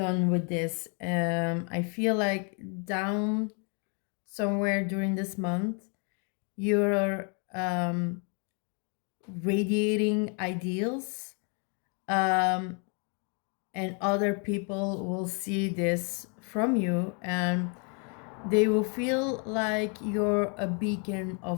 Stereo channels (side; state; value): right; quieter; 37.9 dB